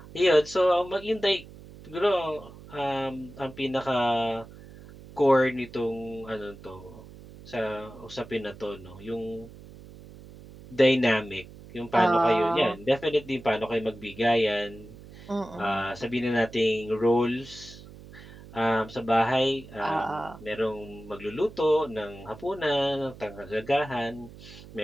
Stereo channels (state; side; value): noise; right; hum, 18 dB below the sound